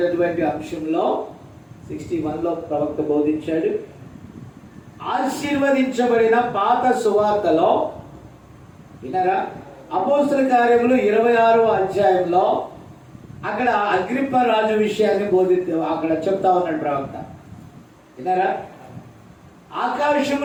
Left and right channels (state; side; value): identical; both; correlation 1.00